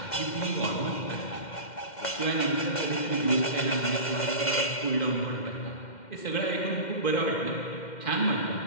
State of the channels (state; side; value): late; right; 2.1 ms